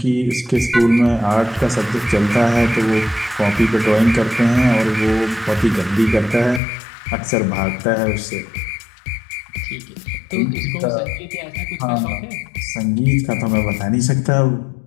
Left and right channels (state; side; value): drops out; right; at 6.6 s